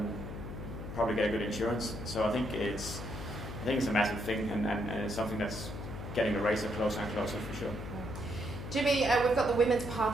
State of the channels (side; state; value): left; noise; hum, 8 dB below the sound